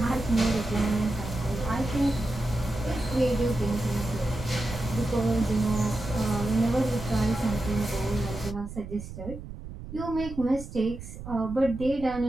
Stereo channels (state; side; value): noise; right; rumble, 11 dB below the sound